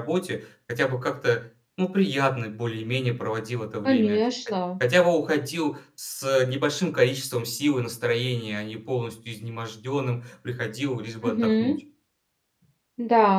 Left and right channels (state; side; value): identical; both; correlation 1.00